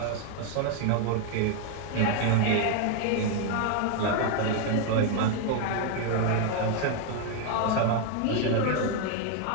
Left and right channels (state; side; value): different; both; correlation 0.01